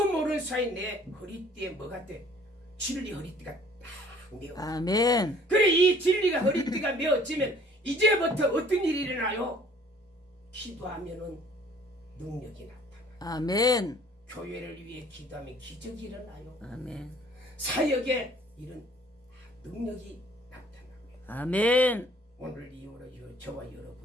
모르는 사이 내 허리띠에 뭐가 돼? 진리 허리띠가 딱 메어. 아멘. 그래, 이 진리가 허리띠가 메어지면 이제부터 어떤 일이 일어나요? 기도하면은 능력이 나타나. 아멘. 교회를 위해 기도하면 기적이 일어나요. 아멘. 사역에 이런 능력이 나타납니다. 아멘. 오늘 이후로 저와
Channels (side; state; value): both; normal; correlation 0.56